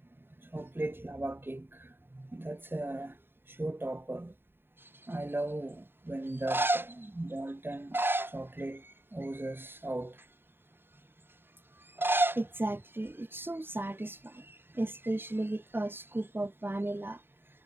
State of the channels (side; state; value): left; late; 0.10 ms